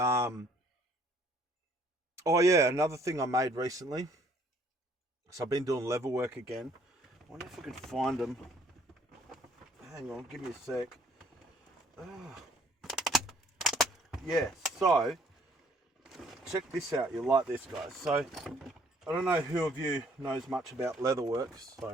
oh yeah, another thing I made recently. So I've been doing level work again. I wonder if I can find them. Hang on, give me a sec. Yeah, so check this out. You'll like this, guys. So I don't know who of you knows much about leatherworks.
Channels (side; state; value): both; normal; correlation 0.61